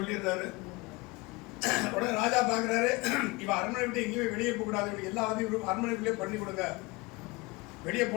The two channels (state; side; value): quieter; right; 24.4 dB